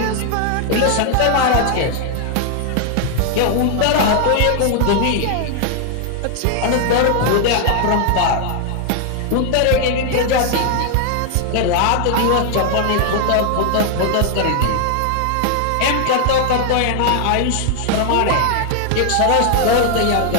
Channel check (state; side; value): different; both; correlation 0.00